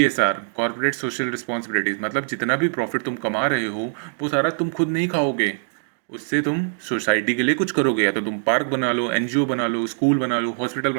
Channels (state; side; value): silent; left; digital silence